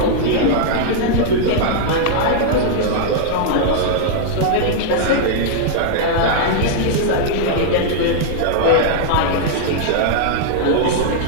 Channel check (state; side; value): different; both; correlation -0.01